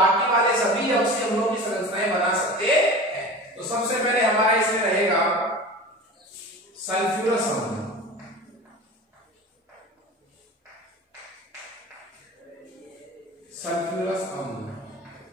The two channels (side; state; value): both; normal; correlation 0.34